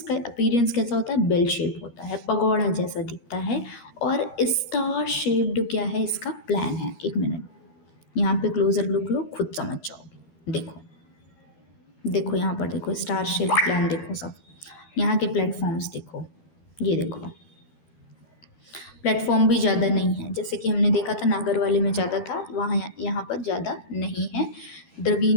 अपीरियंस कैसा होता है, बेल शेप होता है, पगोड़ा जैसा दिखता है। और स्टार शेप्ड क्या है, इसका प्लान है। एक मिनट, यहाँ पे क्लोजर लुक लो, खुद समझ जाओगे। देखो देखो यहाँ पर देखो, स्टार शेप प्लान देखो सब। यहाँ के प्लेटफॉर्म्स देखो, ये देखो, प्लेटफॉर्म भी ज़्यादा नहीं है, जैसे कि हमने देखा था नागर वाले में ज़्यादा था, वहाँ यहाँ पर ज़्यादा नहीं है।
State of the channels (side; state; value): right; late; 13 ms